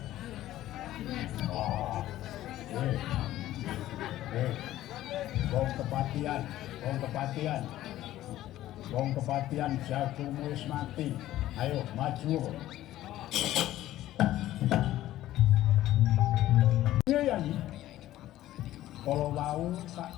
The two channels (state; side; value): quieter; right; 14.3 dB